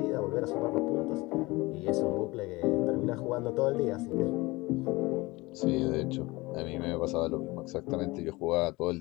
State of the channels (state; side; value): quieter; right; 22.1 dB